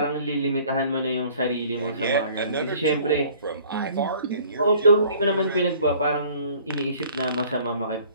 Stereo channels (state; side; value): inverted; both; correlation -0.54